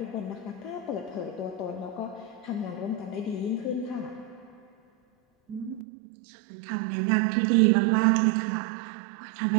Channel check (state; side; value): drops out; left; at 5.9 s